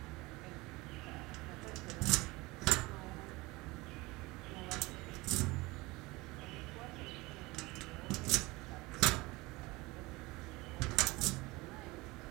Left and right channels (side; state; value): left; quieter; 22.2 dB